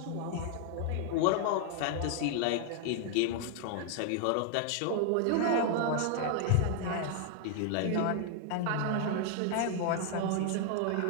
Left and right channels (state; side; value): different; both; correlation 0.00